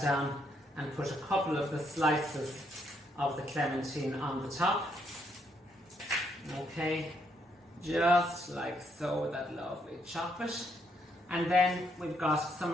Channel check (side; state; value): both; normal; correlation 0.74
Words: down and put a couple of the slices of the clementine on the top. Okay, just like so, with that lovely chocolate. And then we've got